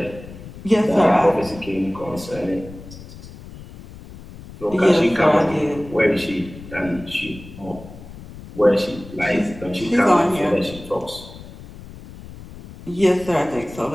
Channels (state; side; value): noise; left; rumble, 16 dB below the sound